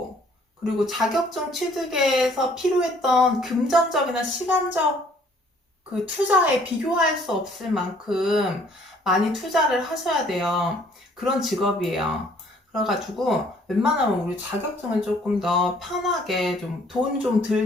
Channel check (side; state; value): both; normal; correlation 0.60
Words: 그리고 자격증 취득에서 필요했던 금전적이나 시간적 그 투자에 비교할 수 없을 만큼 많이 투자를 하셔야 돼요. 그런 직업이에요. 그래가지고 웬만하면 우리 자격증을 조금 더 편하게 좀 돈 좀